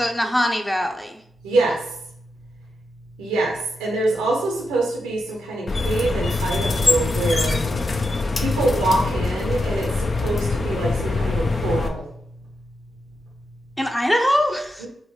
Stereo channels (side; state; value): both; normal; correlation 0.86